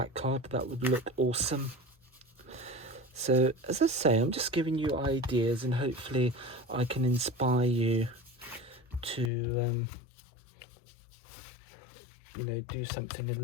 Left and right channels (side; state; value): right; drops out; at 9.3 s